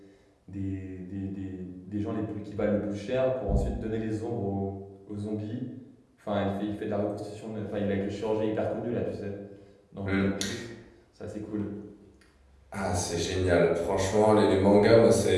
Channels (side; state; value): both; identical; correlation 1.00